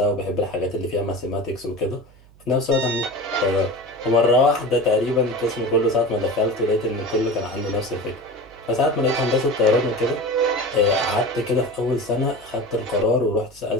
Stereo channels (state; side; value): noise; right; hum, 26 dB below the sound